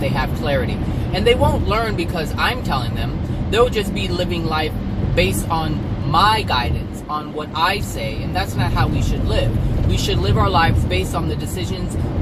have clarity. And they won't learn because I'm telling them. They'll just be living life based on my guidance, on what I say, and that's not how we should live. We should live our lives based on the decisions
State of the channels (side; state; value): both; identical; correlation 1.00